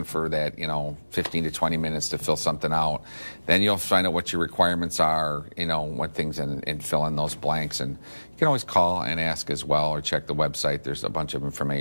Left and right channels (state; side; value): inverted; both; correlation -1.00